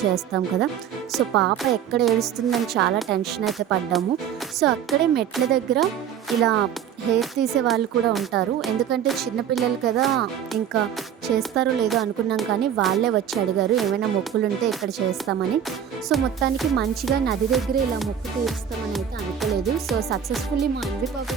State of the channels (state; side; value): quieter; left; 8.9 dB